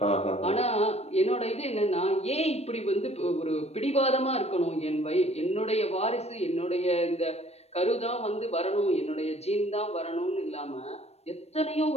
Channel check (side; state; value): right; late; 0.31 ms